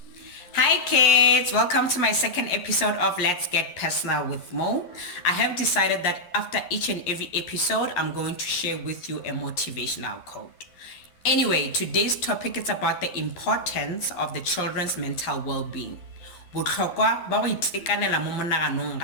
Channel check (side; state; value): right; late; 11 ms